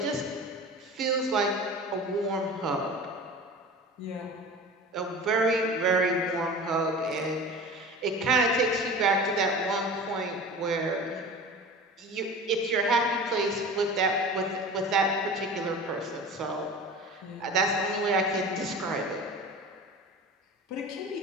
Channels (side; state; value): both; normal; correlation 0.35